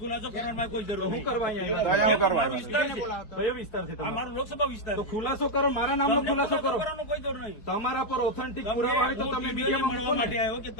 ખુલાસો કરવાનો કોઈ જરૂર શું કરવા અહીંયા મારો વિસ્તાર છે. કયો વિસ્તાર છે? મારો લોકસભા વિસ્તાર. તો ખુલાસો કરો, મારા નામનો ખુલાસો કરો. કોઈ જરૂર નહીં. તમારા પર ઓથેન્ટિક પુરાવા હોય તો તમે મીડિયામાં મળવા માટે આવ્યો કે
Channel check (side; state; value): right; late; 4.7 ms